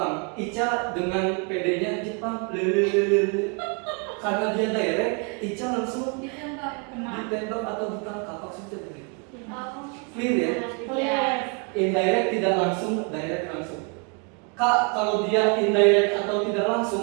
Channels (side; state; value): left; quieter; 34.8 dB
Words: Ica dengan PD-nya Jepang, karena dia direct, Ica langsung ditembak atau ditangkap. Maksudnya begitu. Clear ya? Clear. Indirect tidak langsung, direct langsung. Kak, kalau dia indirect atau tidak